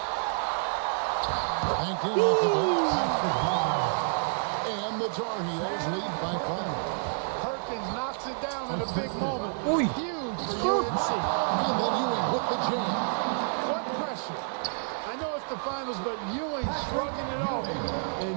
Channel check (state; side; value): silent; left; digital silence